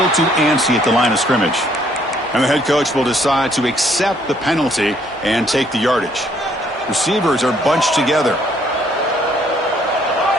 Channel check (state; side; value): normal; both; correlation 0.66